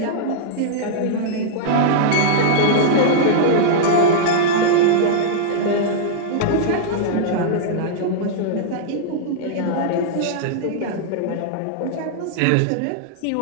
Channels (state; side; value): different; both; correlation -0.02